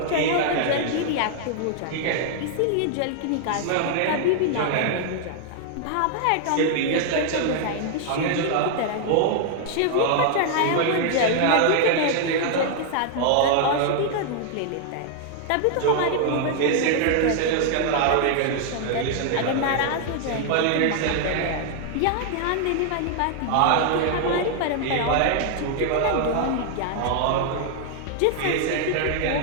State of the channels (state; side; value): different; both; correlation 0.00